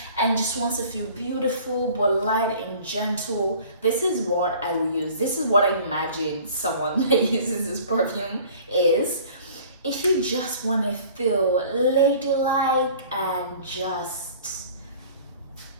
and just wants to feel beautiful but light and gentle. This is what I will use. This is what I imagine someone that uses this perfume is. If you just want to feel ladylike and just,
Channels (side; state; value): both; inverted; correlation -0.48